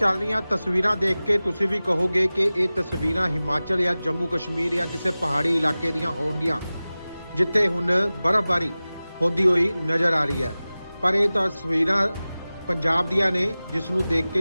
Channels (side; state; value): both; inverted; correlation -0.97